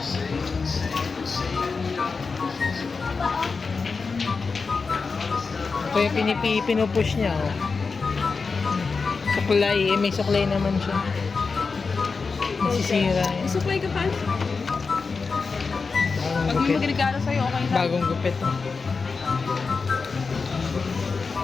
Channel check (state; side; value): quieter; right; 4.6 dB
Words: Kaya pinupush niya. Oh. Suklay. May suklay naman siya. Nasisira yan. Supply ka pa? Bagong Pag may gupit. magregalo sa'yo, okay lang. Bagong gupit. Oh.